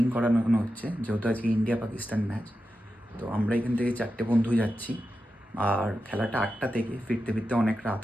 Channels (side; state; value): both; normal; correlation 0.90